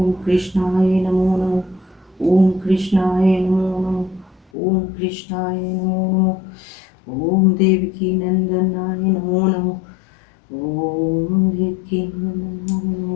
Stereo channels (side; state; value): right; drops out; at 4.5 s